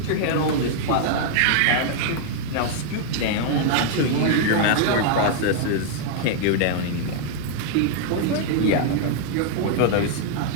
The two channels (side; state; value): both; different; correlation -0.01